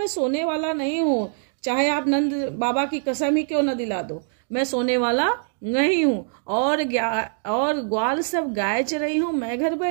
सोने वाला नहीं हूँ, चाहे आप नंद बाबा की कसम ही क्यों न दिला दो, मैं सोने वाला नहीं हूँ। और ग्वाल सब गाय चराई हूँ, मैं घर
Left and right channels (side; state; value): left; silent; digital silence